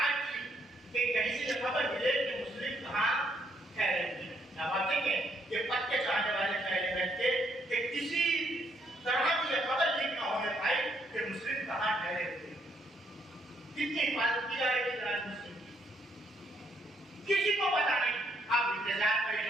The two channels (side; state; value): both; normal; correlation 0.72